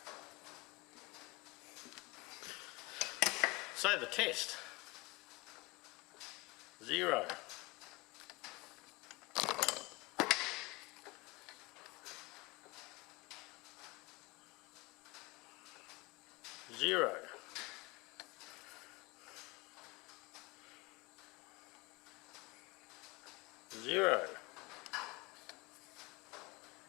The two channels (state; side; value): quieter; right; 24.5 dB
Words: So the test, 0. 0. 0.